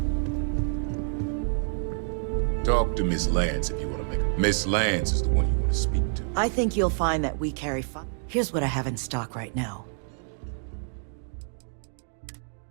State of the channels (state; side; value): silent; left; 60 dB below the other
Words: Talk to Miss Lance if you want to make it. Miss Lance is the one you want to speak to. I think you'll find that we carry Here's what I have in stock right now.